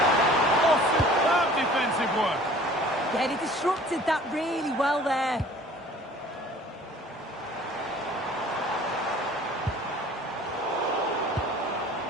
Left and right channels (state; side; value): normal; both; correlation 0.49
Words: Oh, superb defensive work. Yeah, he disrupted that really well there.